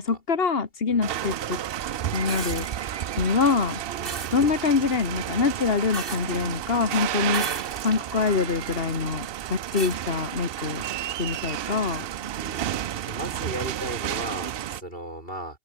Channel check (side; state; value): right; late; 2.7 ms